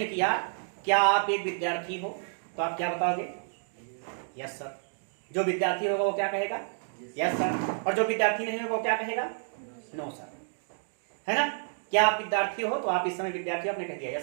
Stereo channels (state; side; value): silent; left; digital silence